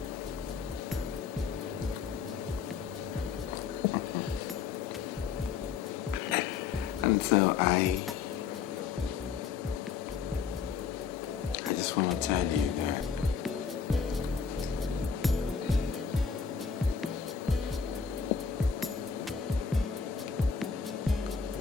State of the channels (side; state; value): right; quieter; 6.2 dB